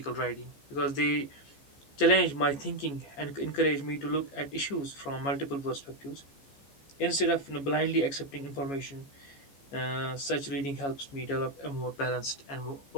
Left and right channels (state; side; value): late; right; 14 ms